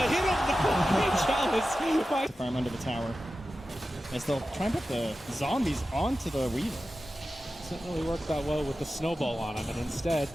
Chalice. Farm under the tower. As they'll try and put the zombies onto the Weaver. Doesn't really work that well with the snowball on him, and instead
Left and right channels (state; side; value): normal; both; correlation 0.93